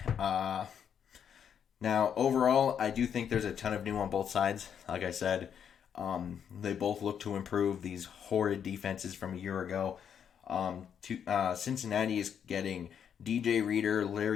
Now, overall, I do think there's a ton of new on both sides. Like I said, they both look to improve these horrid defenses from a year ago. Cincinnati is getting DJ Reader,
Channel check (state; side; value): quieter; right; 8.2 dB